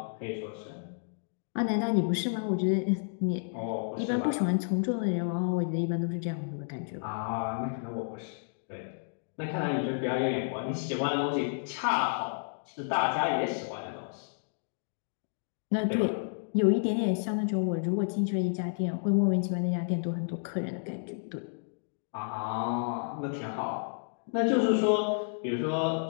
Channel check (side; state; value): right; silent; digital silence